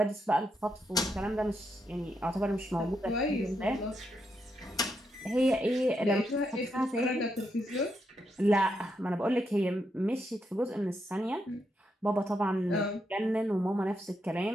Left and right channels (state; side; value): normal; both; correlation 0.81